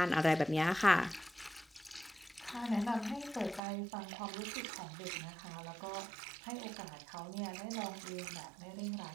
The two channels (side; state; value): left; drops out; at 3.6 s